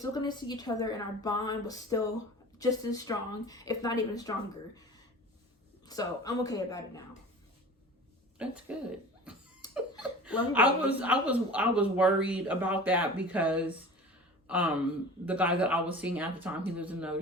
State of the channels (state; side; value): normal; both; correlation 0.39